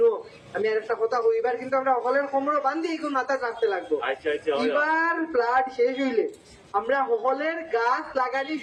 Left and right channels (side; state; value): both; identical; correlation 1.00